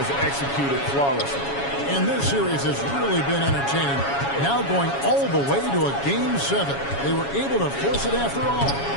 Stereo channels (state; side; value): late; right; 7.2 ms